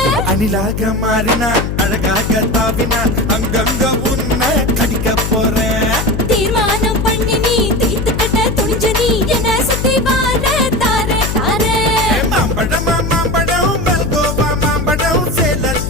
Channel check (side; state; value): left; noise; hum, 3 dB below the sound